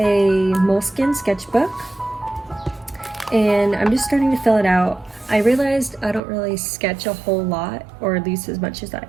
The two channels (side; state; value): left; drops out; at 6.2 s